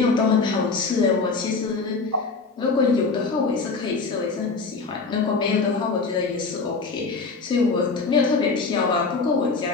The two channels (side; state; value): right; quieter; 4.3 dB